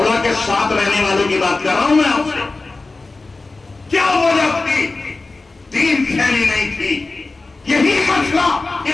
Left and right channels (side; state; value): right; quieter; 3.5 dB